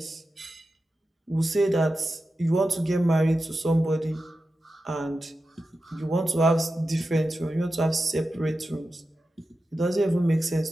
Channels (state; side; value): normal; both; correlation 0.91